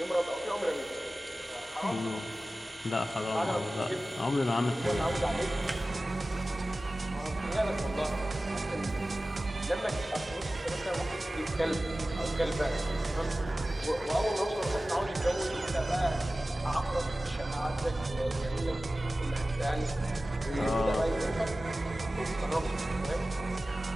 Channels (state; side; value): normal; both; correlation 0.96